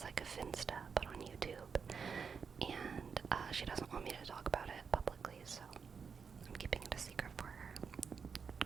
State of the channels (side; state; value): left; quieter; 6.0 dB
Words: like a Finsta but on YouTube, and she doesn't want me to talk about it publicly, so I'm keeping it a secret for her.